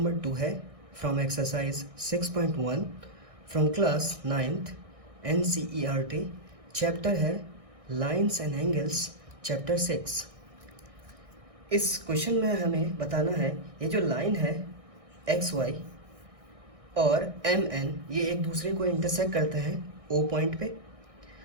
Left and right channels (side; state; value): left; late; 1.6 ms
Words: 2 है from exercise 6.1 from class 9th NCERT। Chapter है lines and angles, chapter 6। इस question में हमें बताना है ये जो लाइन है XY और MN ये एक दूसरे को इंटरसेक्ट करते हैं O पॉइंट पे।